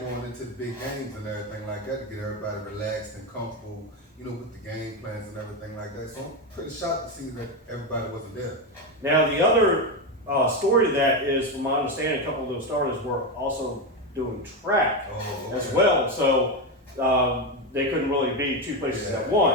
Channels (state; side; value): normal; both; correlation 0.11